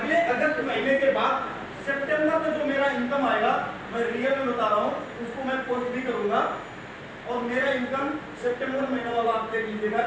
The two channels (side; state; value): both; identical; correlation 1.00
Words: अगस्त महीने के बाद सितंबर में जो मेरा इनकम आएगा, मैं रियल में बता रहा हूँ, उसको मैं पोस्ट भी करूंगा, और मेरा इनकम सितंबर महीना वाला आप देख लीजिएगा